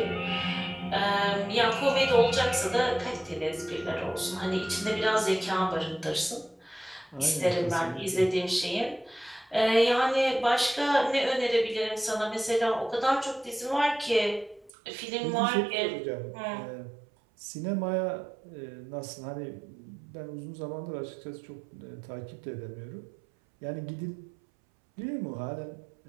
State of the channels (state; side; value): drops out; left; at 14.7 s